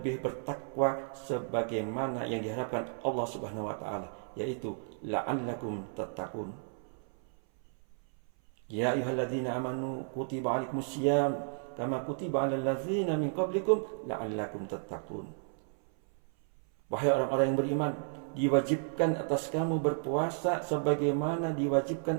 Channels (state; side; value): silent; left; 56 dB below the other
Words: bertakwa sebagaimana yang diharapkan Allah Subhanahu wa taala, yaitu la'allakum tattaqun. Ya ayyuhalladzina amanu kutiba 'alaikumusiyam kama kutiba 'alal ladzina min qablikum la'allakum tattaqun. Wahai orang-orang yang beriman, diwajibkan atas kamu berpuasa sebagaimana